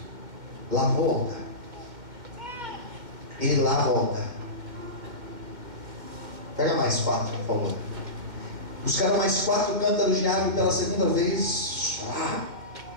lavou o altar. Ele lava o altar. Pega mais 4, por favor. Buscaram mais 4 cântaros de água e pela segunda vez,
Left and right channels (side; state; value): left; late; 2.1 ms